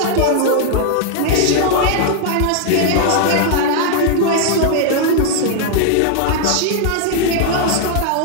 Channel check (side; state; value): both; different; correlation 0.00